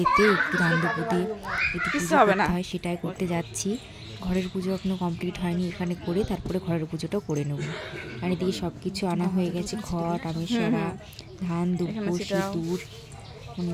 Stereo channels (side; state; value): both; identical; correlation 1.00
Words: একটু ধান দুপুর দিয়ে একটু পুজো করতে হয়, সেটাই করতে যাচ্ছি। ঘরের পুজো এখনও কমপ্লিট হয়নি, এখানে করে তারপরে ঘরের পুজোটাও করে নেব। আর এদিকে সব কিছু আনা হয়ে গেছে, ঘট, আমেশ্বরা, ধান দুপুর, সিঁদুর, মানে